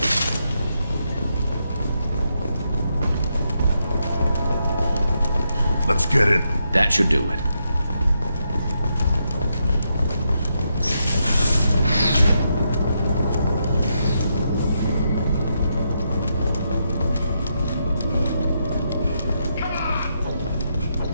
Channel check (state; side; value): inverted; both; correlation -0.81